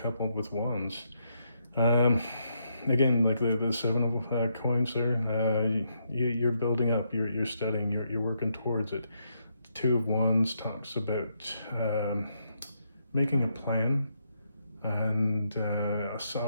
coupled with Wands. Again, like the Seven of Coins there, you're building up, you're studying, you're working towards it. Two of Wands talks about making a plan, and a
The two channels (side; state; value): both; inverted; correlation -0.78